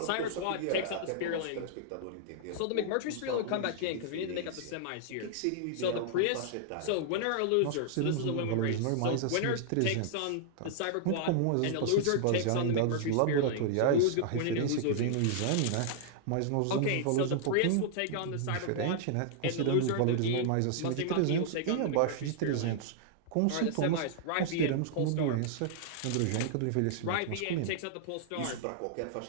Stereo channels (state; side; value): different; both; correlation -0.01